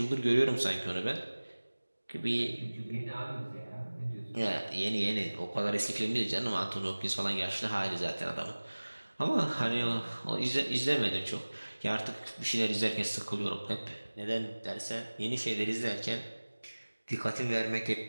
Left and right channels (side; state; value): both; inverted; correlation -1.00